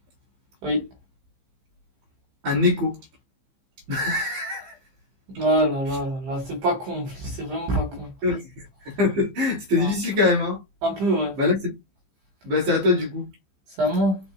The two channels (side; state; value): left; late; 15 ms